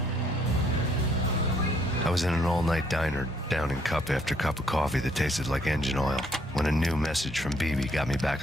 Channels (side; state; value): both; normal; correlation 0.68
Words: I was in an all-night diner, downing cup after cup of coffee that tasted like engine oil, when a new message from BB got me back